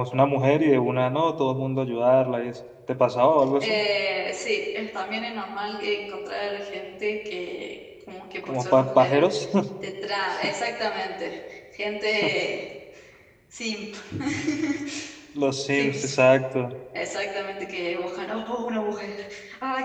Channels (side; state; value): both; identical; correlation 1.00